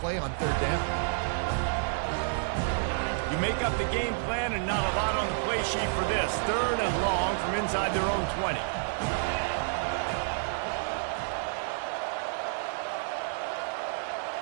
play on third down. You make up the game plan and not a lot on the play sheet for this. Third and long from inside their own 20.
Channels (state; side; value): silent; left; digital silence